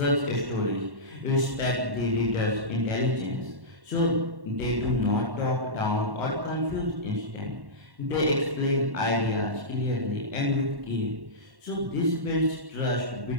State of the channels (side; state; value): left; late; 1.1 ms